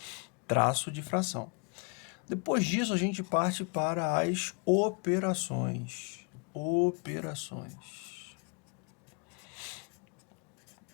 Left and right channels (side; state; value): right; quieter; 36.1 dB